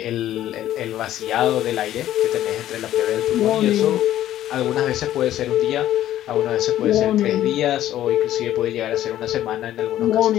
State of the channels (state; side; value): quieter; right; 12.7 dB